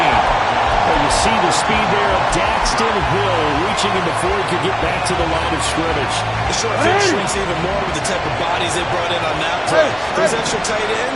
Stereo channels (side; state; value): both; identical; correlation 1.00